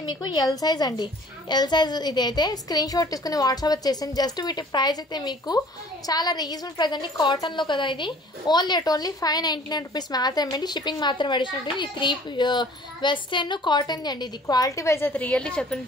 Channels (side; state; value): both; normal; correlation 0.51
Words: మీకు ఎల్ సైజ్ అండి. ఎల్ సైజ్ ఇదైతే స్క్రీన్ షాట్ తీసుకుని వాట్సాప్ వచ్చేసింది. జస్ట్ వీటి ప్రైస్ అయితే మీకు చాలా రీజనబుల్ ప్రైస్ అండి. కాటన్లో కదా ఇది. ఓన్లీ 599 రూపీస్ మాత్రమే అండి. షిప్పింగ్ మాత్రం అడిషనల్ ఉంటుంది. ఈ 3 వెస్టర్న్ కాటన్ అండి. ఇది క్వాలిటీ వైజ్ అయితే రియల్లీ చెప్తుంది,